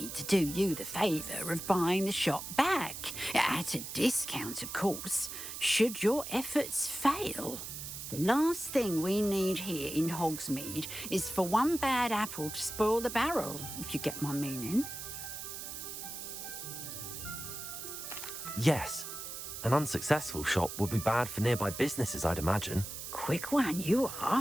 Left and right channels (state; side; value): noise; right; hiss, 8 dB below the sound